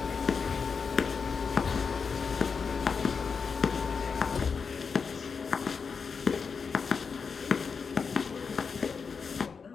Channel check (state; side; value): quieter; right; 5.5 dB